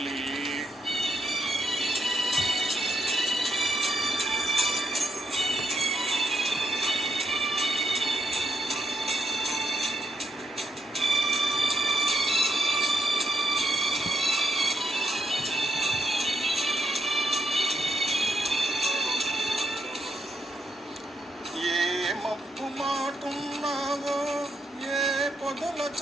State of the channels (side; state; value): both; normal; correlation 0.78